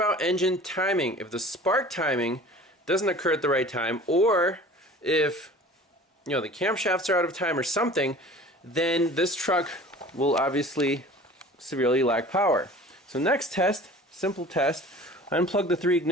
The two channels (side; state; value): both; normal; correlation 0.43